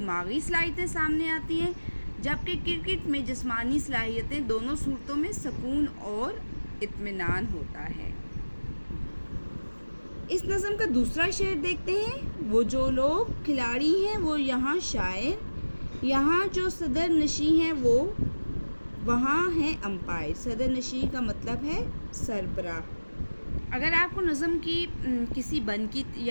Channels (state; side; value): inverted; both; correlation -1.00